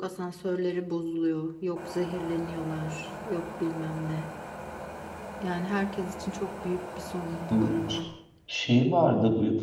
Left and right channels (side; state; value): both; identical; correlation 1.00